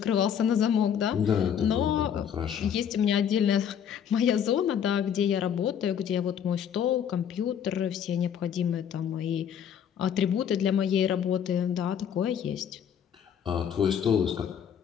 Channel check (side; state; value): right; quieter; 8.5 dB